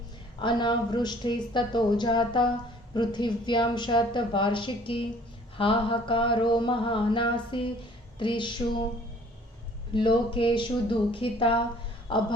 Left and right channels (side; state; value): both; normal; correlation 0.54